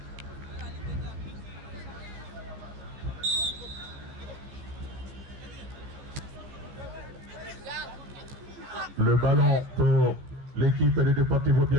Le ballon pour l'équipe de Deportivo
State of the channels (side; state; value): left; late; 14 ms